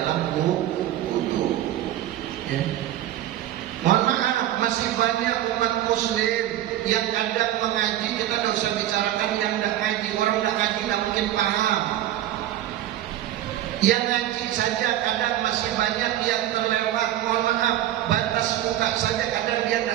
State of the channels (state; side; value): quieter; left; 12.9 dB